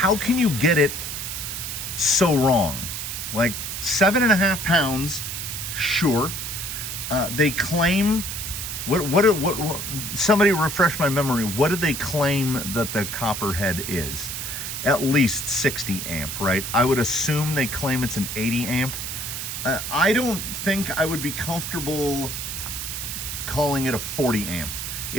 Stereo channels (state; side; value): noise; right; hiss, 5 dB below the sound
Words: get it so wrong? Like 7.5 pounds, sure. They claim, what somebody refresh my memory, what did they claim that the Copperhead is? At least 60 amp, right? I would assume they claim it's an 80 amp. I don't think I would be comfortable calling it a 40 amp.